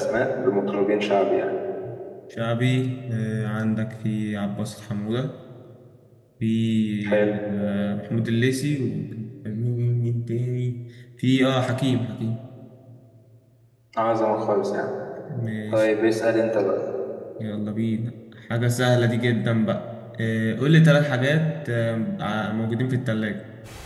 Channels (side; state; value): both; identical; correlation 1.00